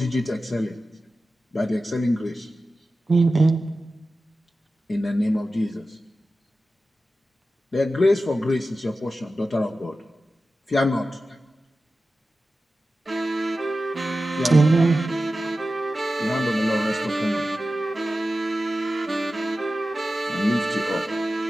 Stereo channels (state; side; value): normal; both; correlation 0.94